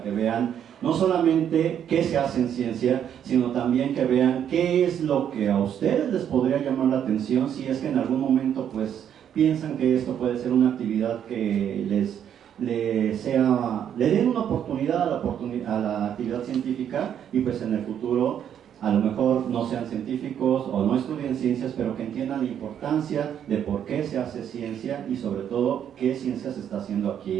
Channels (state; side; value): quieter; left; 9.3 dB